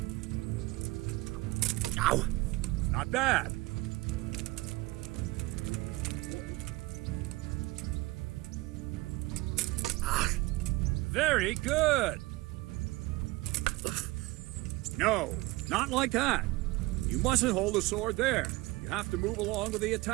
Ow. Not bad. Very good. No, not like that. You mustn't hold the sword there. You have to move along with the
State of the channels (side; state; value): left; quieter; 20.9 dB